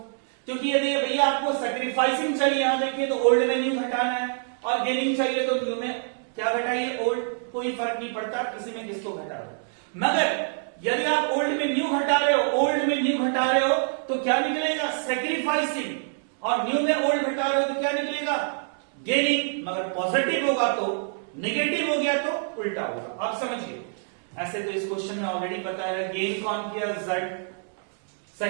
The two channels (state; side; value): silent; left; digital silence